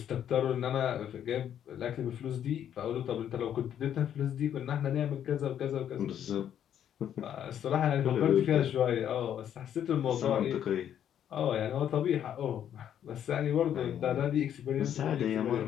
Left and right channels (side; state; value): right; quieter; 9.8 dB